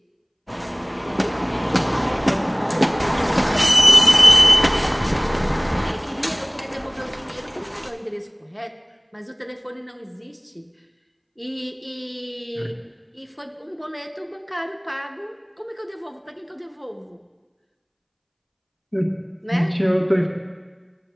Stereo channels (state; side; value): identical; both; correlation 1.00